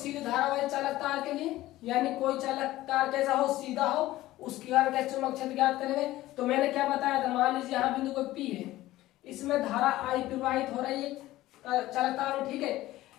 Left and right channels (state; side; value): quieter; right; 16.3 dB